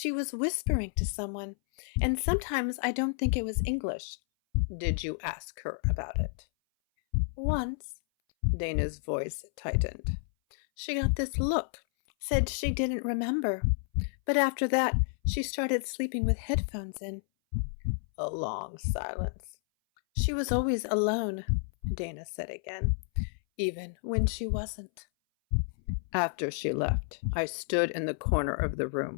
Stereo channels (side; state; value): right; silent; 57 dB below the other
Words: was whispering to someone. And sometimes I don't think it was English. Did you ask her about it? Once. Dana's voice tightened. She got this look, said she didn't remember. But after that, she started sleeping with headphones in. A long silence. She was always alone, Dana said again, even when she wasn't. After she left, I stood in the corner of the